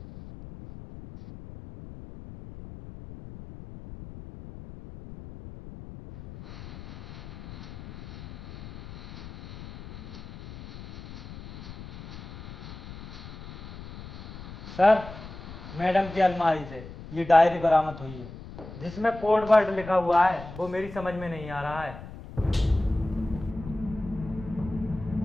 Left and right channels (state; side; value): noise; left; rumble, 13 dB below the sound